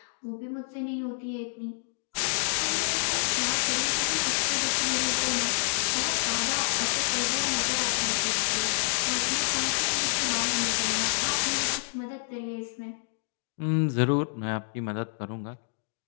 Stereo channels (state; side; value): silent; right; digital silence